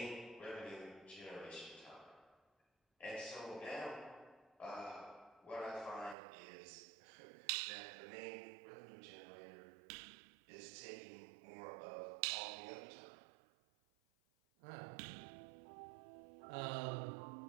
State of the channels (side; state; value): left; drops out; at 6.2 s